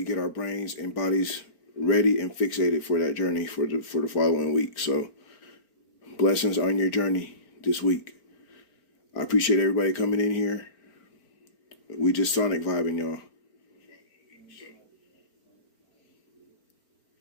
get our brains and bodies ready and fixated for that journey for the following week. So blessings on your journey this week. I appreciate everybody coming in here. We just Sonic vibing, y'all.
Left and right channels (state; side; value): late; right; 4.4 ms